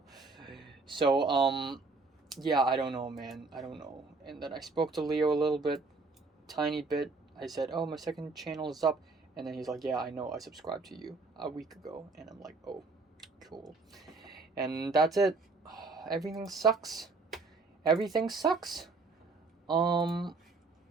So yeah, I don't know, man. I don't know. And then I spoke to Leo a little bit, tiny bit. I said, "Oh, my second channel is up." And then he's like, "Yeah, I know. I subscribed to you a week ago." And I'm like, "Oh, cool." And that's it. Everything sucks. Everything sucks.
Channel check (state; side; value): quieter; left; 3.9 dB